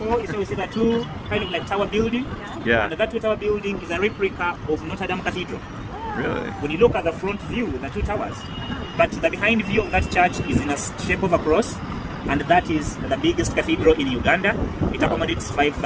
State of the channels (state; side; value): identical; both; correlation 1.00